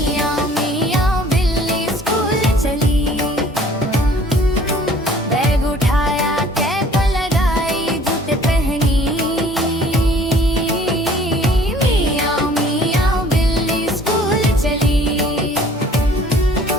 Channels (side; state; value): both; normal; correlation 0.54